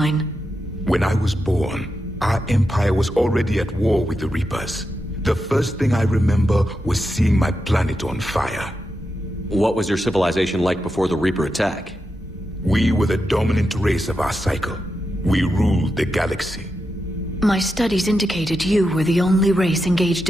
When I was born, our empire was already at war with the Reapers. The first thing I remember was seeing my planet on fire. What was your civilization like before the Reaper attack? We were the dominant race of our cycle. We ruled the galaxy. My studies indicated you were the only race engaged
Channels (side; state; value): both; normal; correlation 0.87